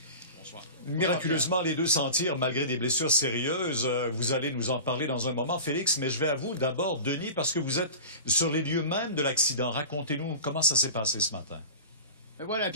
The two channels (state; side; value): inverted; both; correlation -0.34